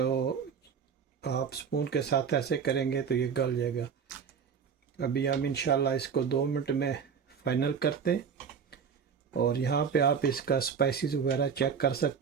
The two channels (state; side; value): quieter; left; 6.8 dB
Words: आप स्पून के साथ ऐसे करेंगे तो ये गल जाएगा। अभी हम इंशाल्लाह इसको 2 मिनट में फ़ाइनल करते हैं। और यहाँ पे आप इसका स्पाइसेस वगैरह चेक कर